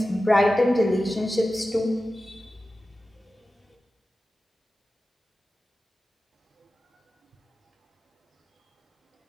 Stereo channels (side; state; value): both; normal; correlation 0.94